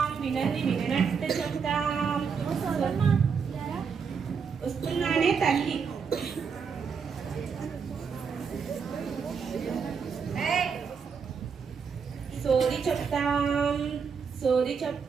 వినది విననట్టు చెప్తాం. వస్తున్నానే తల్లి. సోది చెప్తాం, సోది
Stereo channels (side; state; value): left; quieter; 6.1 dB